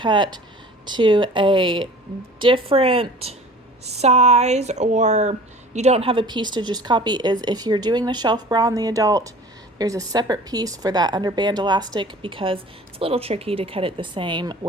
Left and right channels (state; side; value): normal; both; correlation 0.43